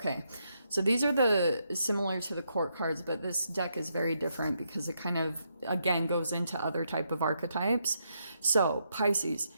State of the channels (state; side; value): inverted; both; correlation -0.79